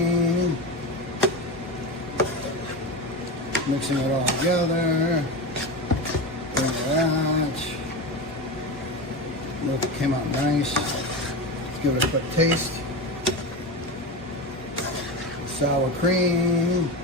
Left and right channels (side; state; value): both; normal; correlation 0.22